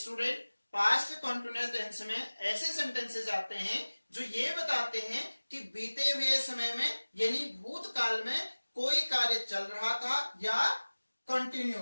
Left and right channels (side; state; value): both; inverted; correlation -1.00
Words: past continuous tense में ऐसे sentences आते हैं जो ये बताते हैं कि बीते हुए समय में यानी भूतकाल में कोई कार्य चल रहा था या